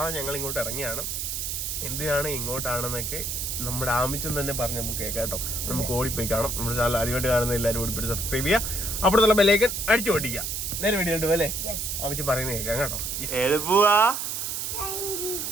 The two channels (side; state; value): right; noise; hiss, 3 dB below the sound